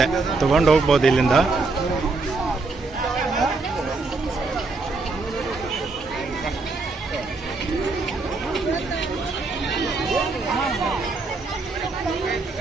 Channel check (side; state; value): left; quieter; 3.7 dB